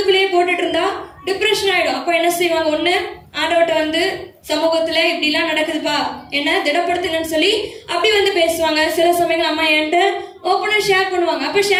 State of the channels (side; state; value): both; identical; correlation 1.00